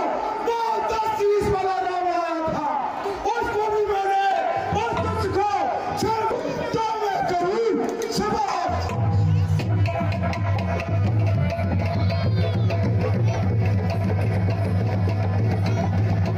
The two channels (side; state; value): both; identical; correlation 1.00